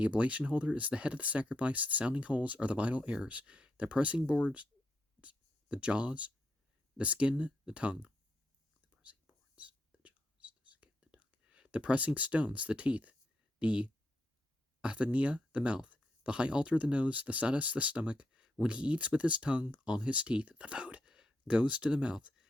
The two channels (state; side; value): normal; both; correlation 0.81